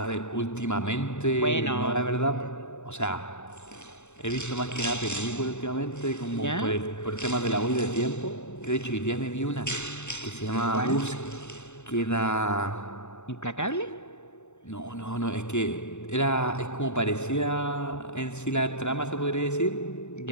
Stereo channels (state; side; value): late; right; 0.83 ms